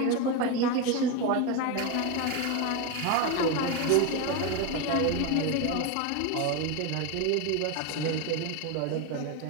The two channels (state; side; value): different; both; correlation 0.03